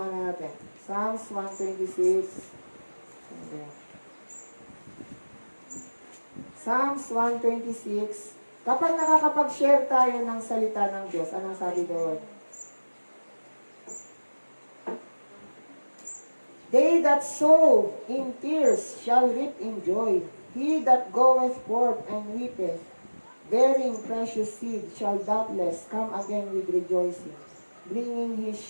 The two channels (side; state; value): both; inverted; correlation -1.00